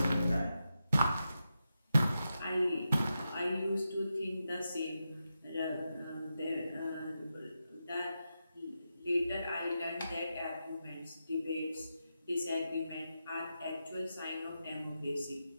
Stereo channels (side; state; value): both; inverted; correlation -0.88